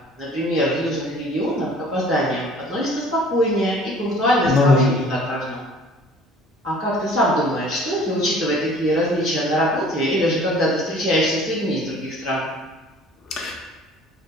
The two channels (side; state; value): both; normal; correlation 0.51